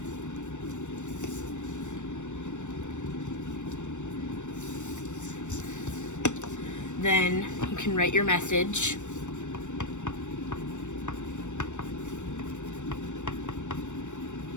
Then you can write your message.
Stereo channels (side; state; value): right; late; 0.84 ms